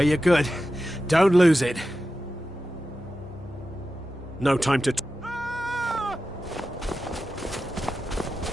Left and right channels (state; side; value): normal; both; correlation 0.92